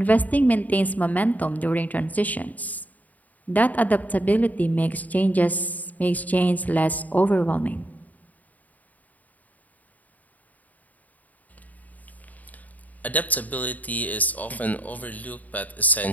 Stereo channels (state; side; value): late; right; 0.076 ms